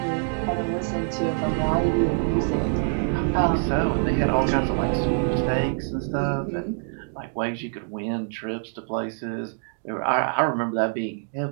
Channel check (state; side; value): silent; left; 62 dB below the other